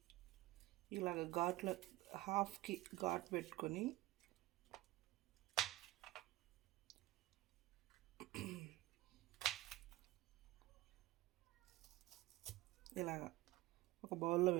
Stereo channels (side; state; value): left; quieter; 17.9 dB